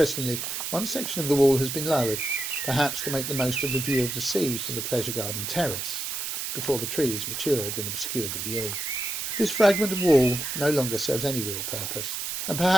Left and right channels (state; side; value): noise; right; hiss, 4 dB below the sound